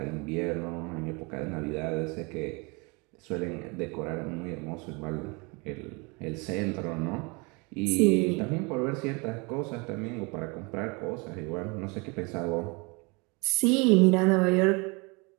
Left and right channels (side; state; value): left; quieter; 29.1 dB